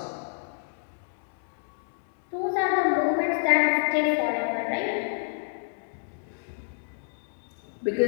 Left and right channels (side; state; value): right; silent; digital silence